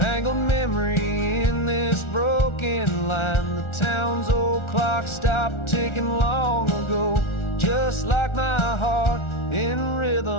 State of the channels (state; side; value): late; right; 1.4 ms